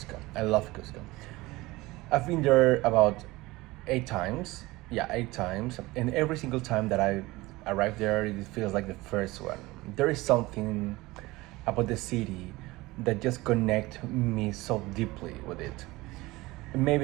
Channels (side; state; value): left; quieter; 20.4 dB